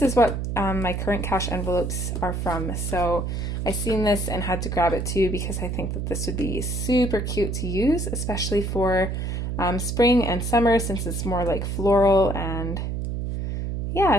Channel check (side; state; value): right; noise; hum, 2 dB below the sound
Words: is what my current cash envelopes are from. So I seen this and had to grab it too because I think that this would be super cute to use, especially for spring and summer since it's more like floral. And